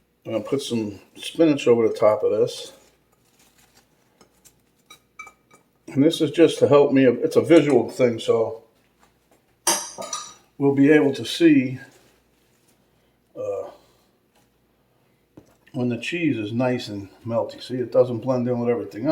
I'm going to put some spinach over the top of this. And this is just to help me. It's a visual thing, so we'll be able to see when the cheese is nice and melty. See, it doesn't blend in with everything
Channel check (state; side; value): identical; both; correlation 1.00